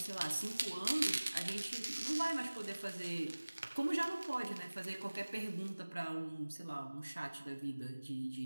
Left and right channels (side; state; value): both; inverted; correlation -1.00